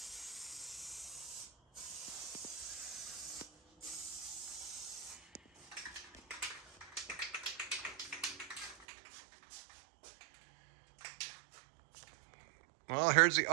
Well, here's the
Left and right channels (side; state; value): left; drops out; at 8.8 s